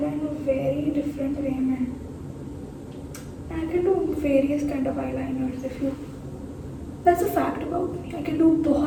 very different way, man. I can do various kind of eyeliners if you. That's a fact about me. I can do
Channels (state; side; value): identical; both; correlation 1.00